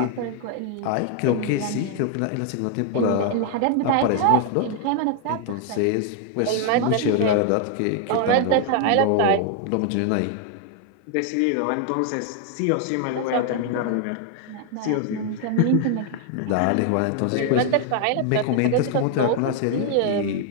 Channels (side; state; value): both; different; correlation 0.00